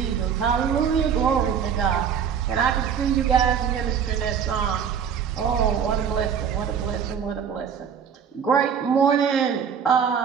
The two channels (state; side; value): quieter; left; 7.5 dB